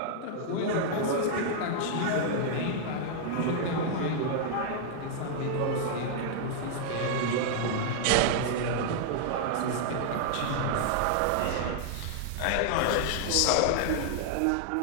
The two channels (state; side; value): different; both; correlation -0.01